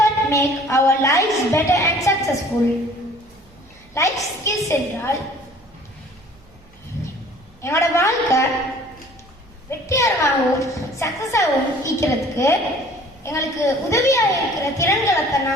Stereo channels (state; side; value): noise; right; hum, 28 dB below the sound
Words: make our lives better and successful. Life skills என்றால் என்னோட வாழ்க்கை வெற்றிகரமாகவும் சக்சஸாகவும் இருக்கிறதுக்கு எங்களுக்கு உதவியாக இருக்கிற திறன்களை தான்